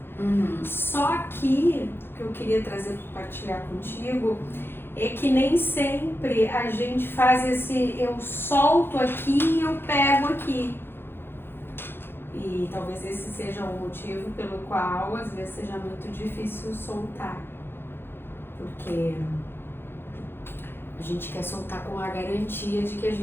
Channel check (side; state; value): right; late; 0.10 ms